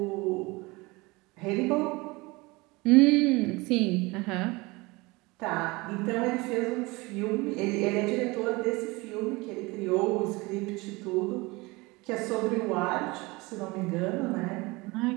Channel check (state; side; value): quieter; left; 23.7 dB